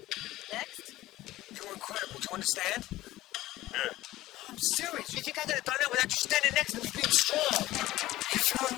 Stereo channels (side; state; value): right; quieter; 16.3 dB